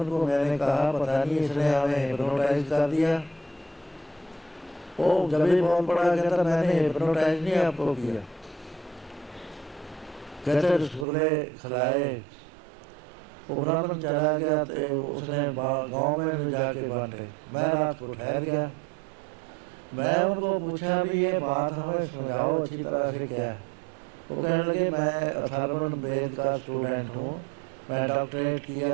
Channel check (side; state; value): left; drops out; at 11.1 s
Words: को मैंने कहा पता नहीं इसने हमें हिप्नोटाइज कर दिया। वो जब ही बोल पड़ा, कहता मैंने हिप्नोटाइज नहीं आपको किया। कहते रसगुल्ले खिलाए। वो ब्राह्मण चला गया। तो उसने गांव में भी जाके बांटे। मैं रात को ठहर गया। मैं उनको पूछा भी ये बात हमें समझाओ अच्छी तरह से क्या है। वो कहने लगे मैं अथर्वण वेद का स्टूडेंट हूँ, मैं डॉक्टरेट